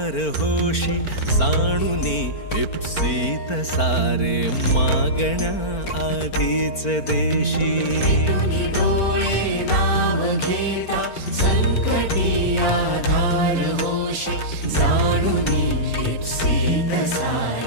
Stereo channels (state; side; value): late; right; 4.4 ms